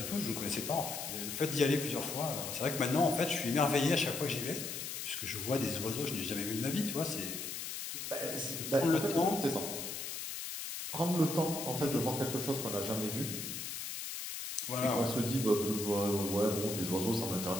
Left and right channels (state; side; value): noise; left; hiss, 6 dB below the sound